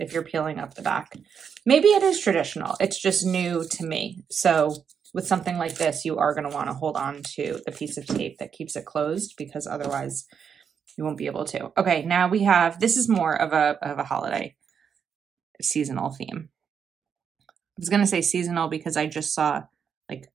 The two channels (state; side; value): quieter; left; 7.1 dB